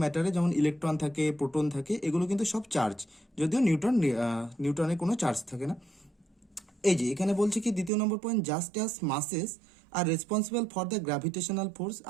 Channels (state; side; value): drops out; left; at 7.9 s